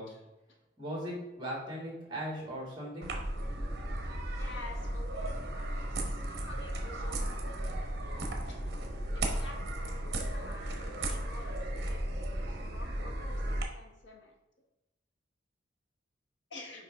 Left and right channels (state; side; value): normal; both; correlation 0.72